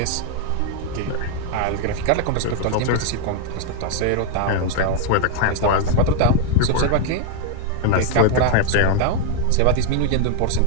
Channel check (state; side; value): different; both; correlation 0.00